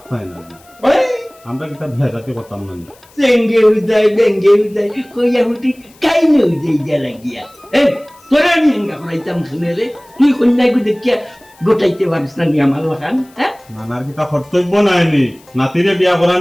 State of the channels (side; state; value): left; noise; hiss, 28 dB below the sound